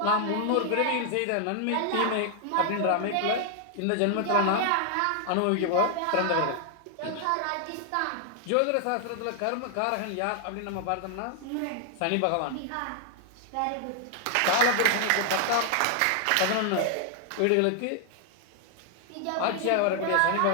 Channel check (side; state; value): both; different; correlation 0.00